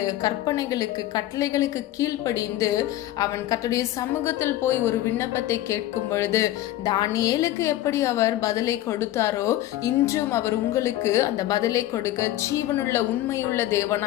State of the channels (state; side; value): quieter; right; 14.4 dB